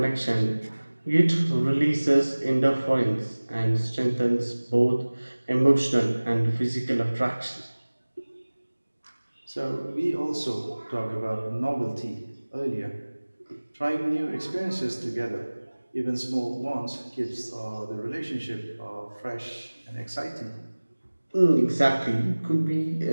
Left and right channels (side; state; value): both; inverted; correlation -1.00